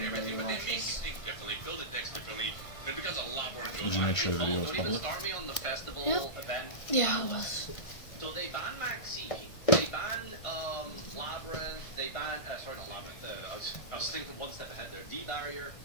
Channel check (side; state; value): right; late; 1.5 ms